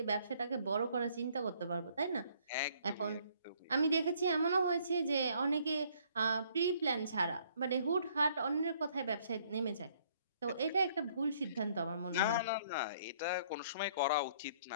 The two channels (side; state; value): both; inverted; correlation -0.63